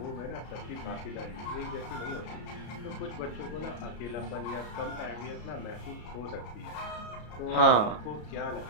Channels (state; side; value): late; right; 33 ms